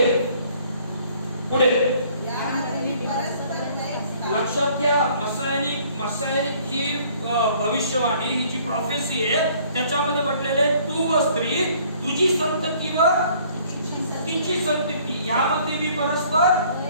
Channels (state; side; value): inverted; both; correlation -0.59